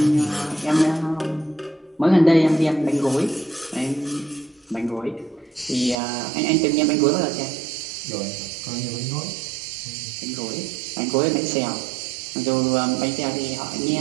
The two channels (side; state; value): left; drops out; at 6.0 s